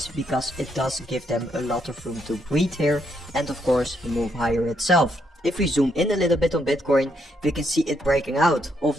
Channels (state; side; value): normal; both; correlation 0.76